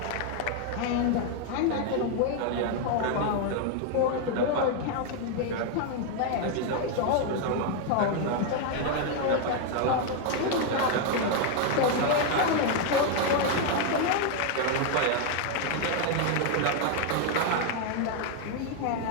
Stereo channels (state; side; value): different; both; correlation 0.01